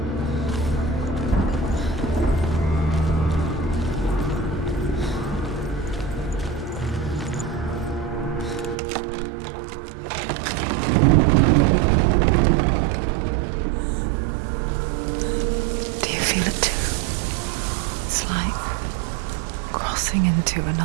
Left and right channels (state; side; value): drops out; left; at 8.8 s